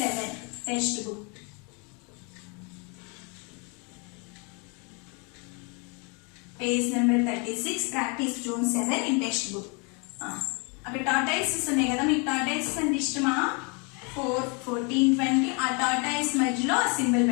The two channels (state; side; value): quieter; right; 33.4 dB